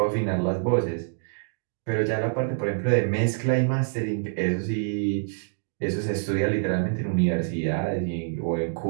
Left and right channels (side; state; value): left; silent; digital silence